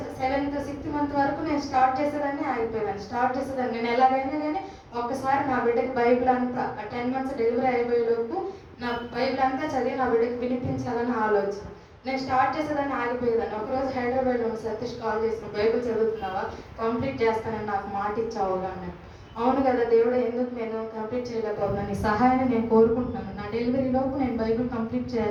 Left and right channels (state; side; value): identical; both; correlation 1.00